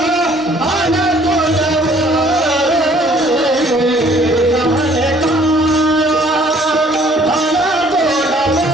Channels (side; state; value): both; normal; correlation 0.59